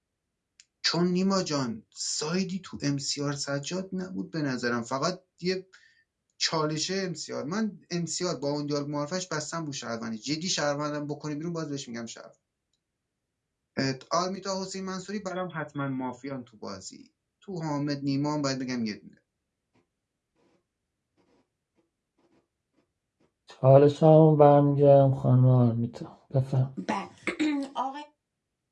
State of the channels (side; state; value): both; identical; correlation 1.00